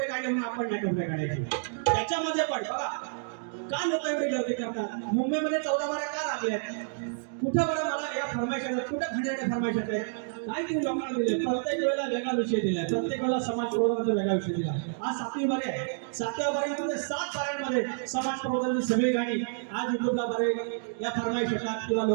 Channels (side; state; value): left; silent; digital silence